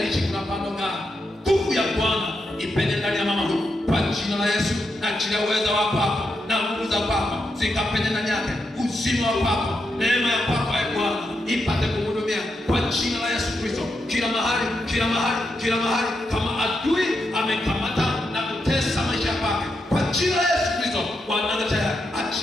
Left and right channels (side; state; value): both; normal; correlation 0.84